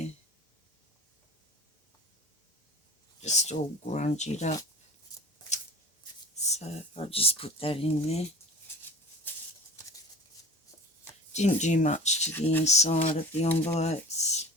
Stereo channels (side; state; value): both; normal; correlation 0.38